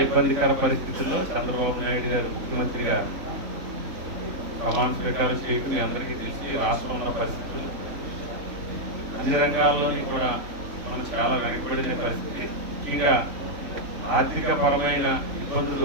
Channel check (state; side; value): late; left; 3.5 ms